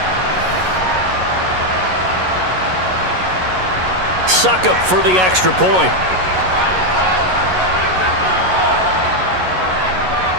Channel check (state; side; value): late; left; 11 ms